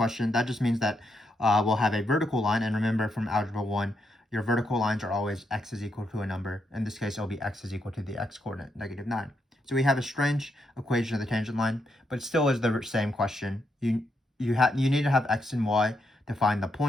That just means that we'll have a vertical line. And remember from Algebra 1, your vertical lines are always x is equal to a number. In this case, it'll be x is equal to the x coordinate, negative 9. So we have a strange equation of the tangent line, but it still is the same question. You need to have x and y to find the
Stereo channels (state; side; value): normal; both; correlation 0.80